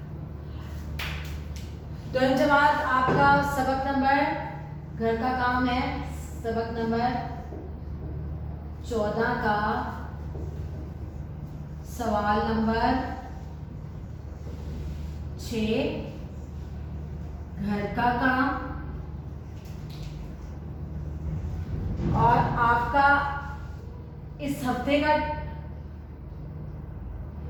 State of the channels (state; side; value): identical; both; correlation 1.00